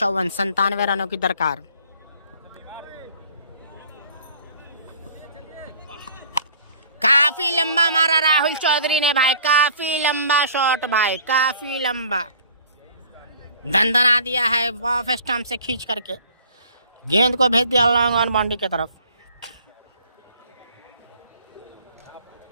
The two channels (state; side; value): inverted; both; correlation -0.52